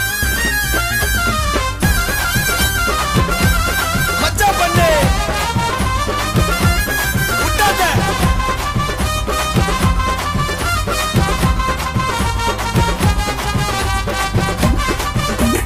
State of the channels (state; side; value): identical; both; correlation 1.00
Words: மச்சா பண்ணு விட்டாத.